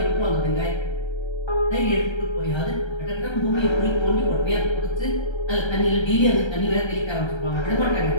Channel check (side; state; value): right; late; 1.3 ms